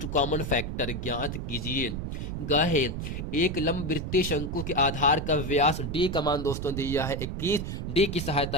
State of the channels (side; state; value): right; noise; rumble, 4 dB below the sound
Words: कॉमन फैक्टर ज्ञात कीजिए। ग है एक लंबवृत्तीय शंकु के आधार का व्यास D का मान दोस्तों दिया है 21। D की